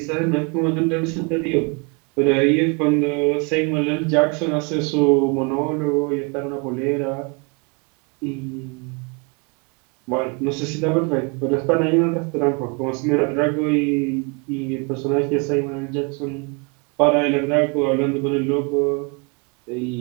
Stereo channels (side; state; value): left; quieter; 31.8 dB